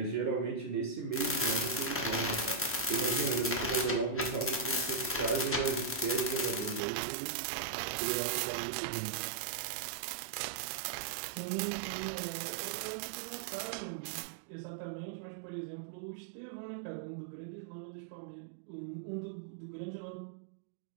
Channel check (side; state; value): left; drops out; at 6.8 s